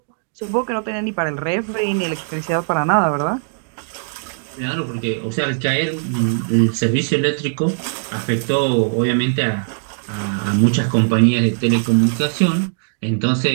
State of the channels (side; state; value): left; silent; digital silence